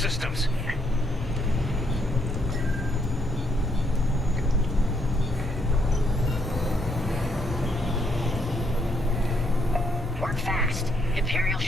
Work fast. Imperial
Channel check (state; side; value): normal; both; correlation 0.73